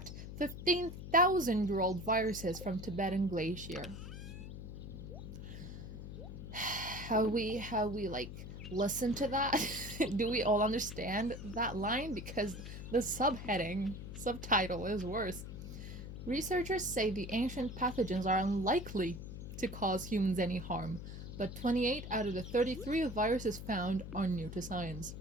15,000-year-old Viruses from Tibetan Glacier. How we like listen to that? Do we all understand that line? Because the subtitle is worse. Researchers say the ancient pathogens are unlikely to cause humans any harm, but 28 out of the 33 viruses found are new to science.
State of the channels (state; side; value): noise; left; hum, 9 dB below the sound